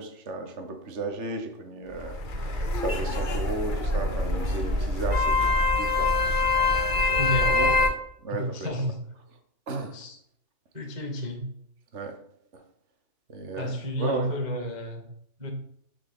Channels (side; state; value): left; late; 2.4 ms